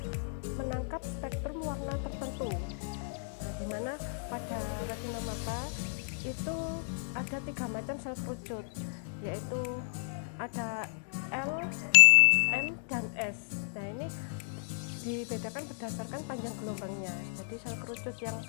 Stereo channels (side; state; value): right; silent; digital silence